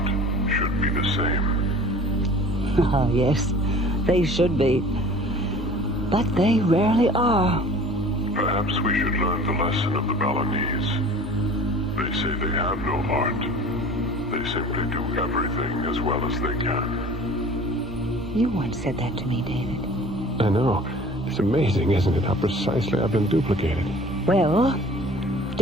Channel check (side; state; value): both; normal; correlation 0.45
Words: should be the same. Ah, yes, they should be. But they rarely are. Perhaps we should learn the lesson of the Balinese. They say they have no art. They simply do everything as well as they can. You once said that to me, David. I know. It's amazing, isn't it, how precisely I've been duplicated. Well,